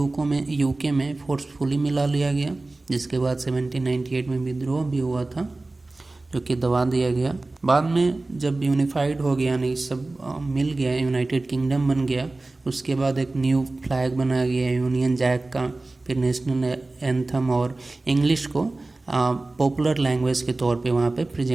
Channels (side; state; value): left; quieter; 3.1 dB